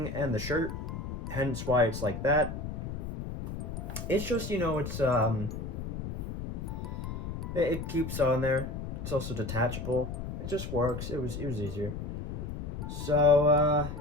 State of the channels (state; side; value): noise; left; rumble, 6 dB below the sound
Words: and the shirt, hence why it's like that. It's just, it's it keeps on there. It's also detachable. It just works. It was easier. So